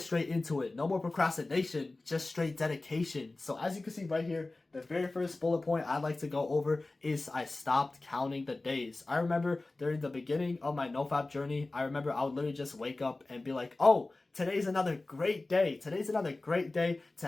straight into it. No more procrastination, just straight dedication. So as you can see right here, the very first bullet point I'd like to go over is I stopped counting the days. I remember during the beginning of my NoFap journey, I remember I would literally just wake up and be like, oh, today's another great day. Today's another great day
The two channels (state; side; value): quieter; right; 3.1 dB